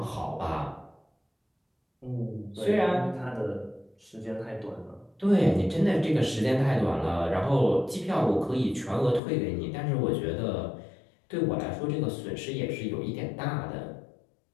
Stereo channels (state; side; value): drops out; right; at 9.2 s